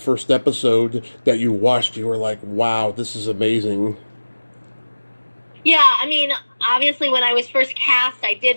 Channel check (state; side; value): inverted; both; correlation -1.00